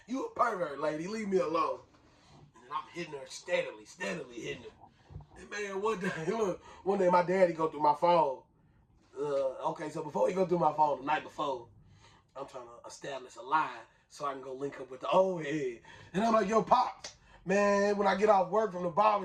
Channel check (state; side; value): identical; both; correlation 1.00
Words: You a pervert, lady. Leave me alone. And then I'm hitting her steadily hitting her. And man, one day my daddy go through my phone. Okay, so before he go through my phone the night before, I'm trying to establish a line so I can go link up with the old head. And I'm like, yo, Pops, man, when I get off work from the